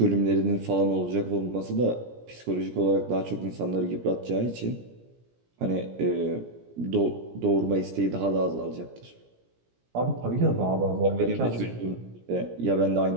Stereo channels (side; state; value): left; late; 17 ms